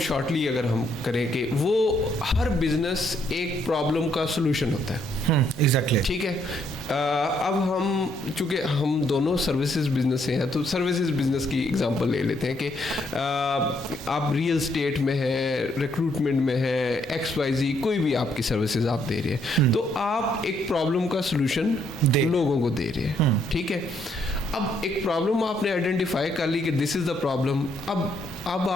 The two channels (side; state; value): both; normal; correlation 0.71